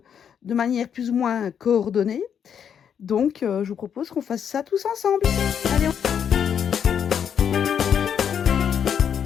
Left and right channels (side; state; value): right; quieter; 8.1 dB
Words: de manière plus ou moins coordonnée. Donc, je vous propose qu'on fasse ça tous ensemble. Allez,